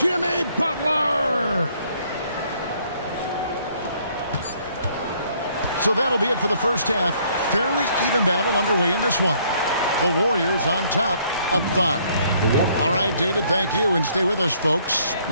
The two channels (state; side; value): inverted; both; correlation -0.65